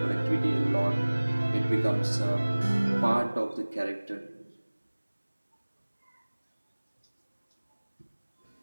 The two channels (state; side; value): inverted; both; correlation -1.00